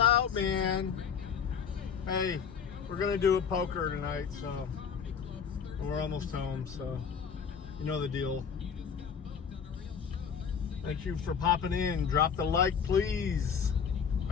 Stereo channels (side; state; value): right; quieter; 6.9 dB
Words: man. Hey, we're gonna do a poker tonight, so we're almost home, so you know the deal. Thank you for popping in. Drop the like, please.